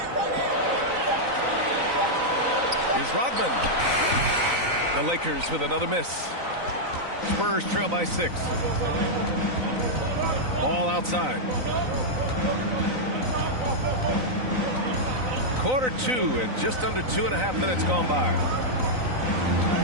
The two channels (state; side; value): late; left; 3.9 ms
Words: Here's Rodman. The Lakers with another miss. Spurs trail by 6. Ball outside. Quarter 2 and just under 2.5 minutes gone by.